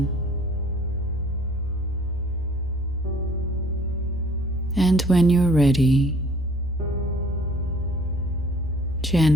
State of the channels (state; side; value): normal; both; correlation 0.54